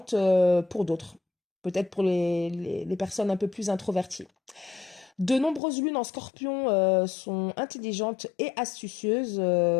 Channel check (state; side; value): drops out; right; at 5.6 s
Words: pour d'autres. Peut-être pour les personnes un peu plus introverties. De nombreuses lunes en scorpion sont intelligentes et astucieuses.